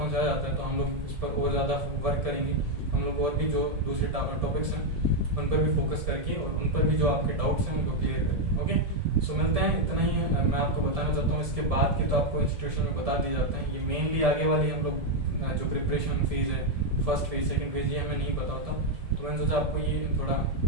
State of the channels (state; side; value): late; left; 1.7 ms